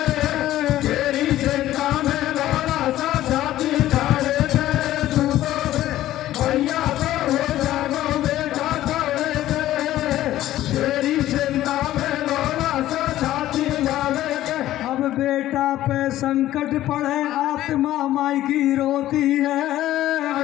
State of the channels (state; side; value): quieter; right; 14.1 dB